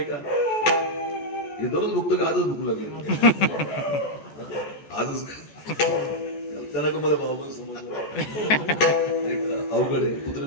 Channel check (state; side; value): late; right; 14 ms